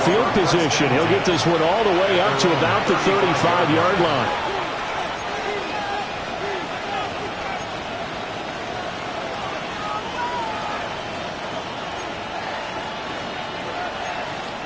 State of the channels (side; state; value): both; identical; correlation 1.00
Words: position. He'll get this one all the way up to about the 35-yard line.